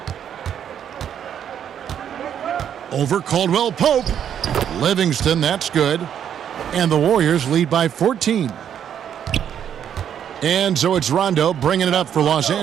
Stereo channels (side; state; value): left; quieter; 9.1 dB